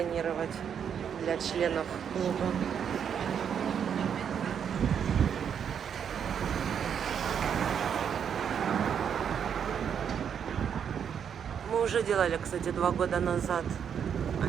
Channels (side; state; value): left; quieter; 7.9 dB